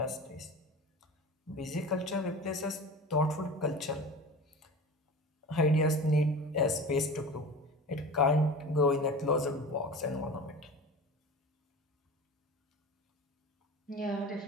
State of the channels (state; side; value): normal; both; correlation 0.34